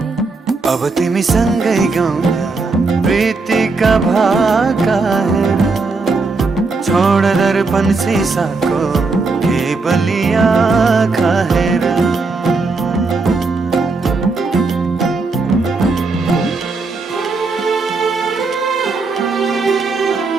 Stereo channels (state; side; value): quieter; left; 4.0 dB